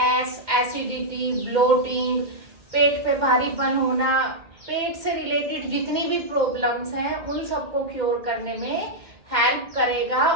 एसिडिटी, ब्लोटिंग, पेट पे भारीपन होना, पेट से रिलेटेड जितनी भी प्रॉब्लम्स हैं उन सबको क्योर करने में हेल्प करेगा।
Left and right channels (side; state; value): left; late; 2.1 ms